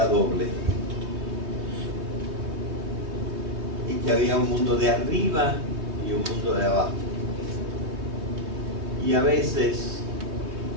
doble, y que había un mundo de arriba y un mundo de abajo, y a veces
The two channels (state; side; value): late; left; 3.2 ms